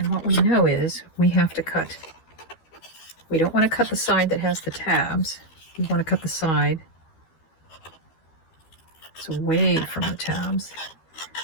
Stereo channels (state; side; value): late; right; 12 ms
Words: what we know is we have to cut. We don't want to cut the side that has the tabs. We want to cut the side that's away from the tabs,